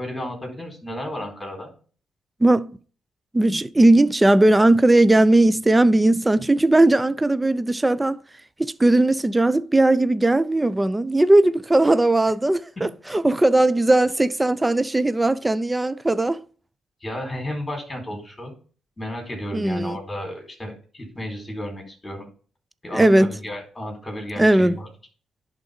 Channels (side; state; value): both; normal; correlation 0.98